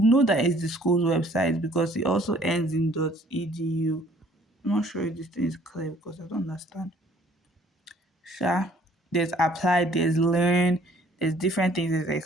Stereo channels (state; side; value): normal; both; correlation 0.58